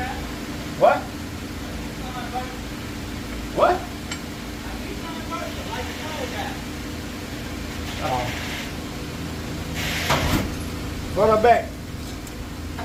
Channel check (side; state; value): both; identical; correlation 1.00